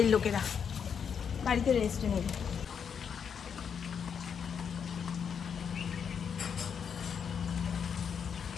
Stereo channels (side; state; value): right; quieter; 7.1 dB